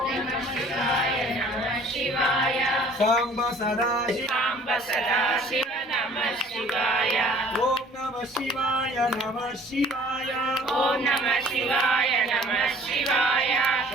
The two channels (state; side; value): normal; both; correlation 0.52